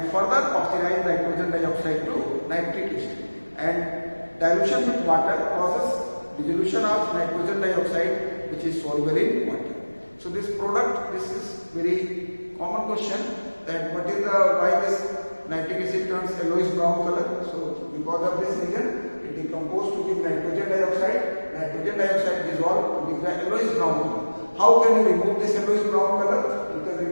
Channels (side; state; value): both; inverted; correlation -1.00